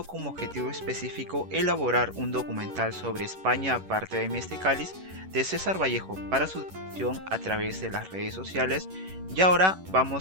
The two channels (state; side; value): late; left; 11 ms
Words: como objetivo específico elaborar un documental sobre España aparte de mi este cáliz de César Vallejo para su difusión a través de las redes sociales. Y ahora